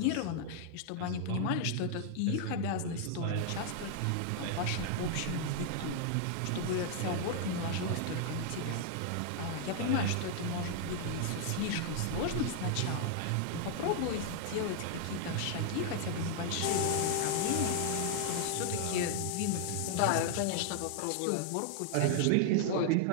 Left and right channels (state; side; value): different; both; correlation 0.00